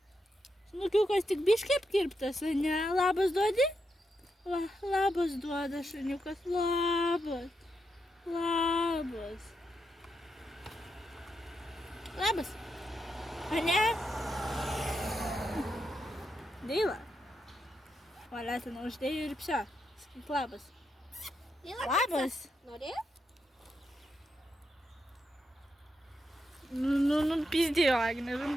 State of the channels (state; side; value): normal; both; correlation 0.83